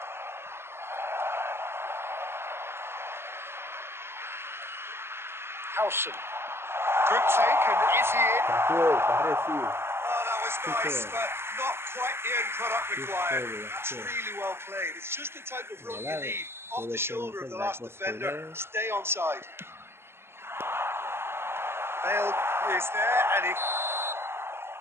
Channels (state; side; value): late; left; 0.12 ms